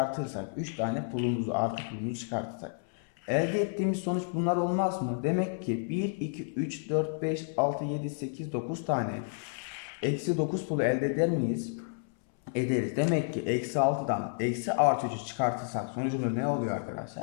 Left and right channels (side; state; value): right; silent; 57 dB below the other